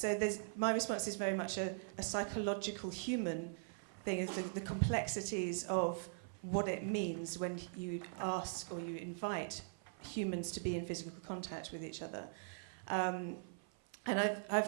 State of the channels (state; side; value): silent; left; 50 dB below the other